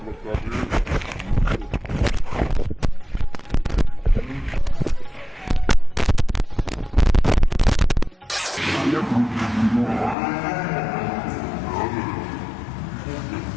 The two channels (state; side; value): drops out; right; at 10.2 s